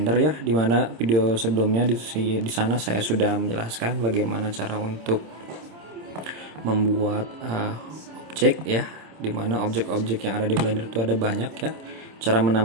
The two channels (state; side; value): late; left; 26 ms